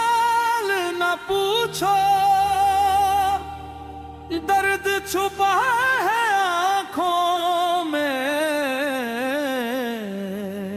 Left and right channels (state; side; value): identical; both; correlation 1.00